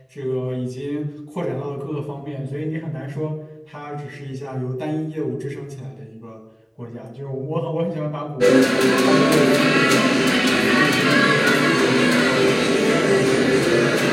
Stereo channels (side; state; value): both; identical; correlation 1.00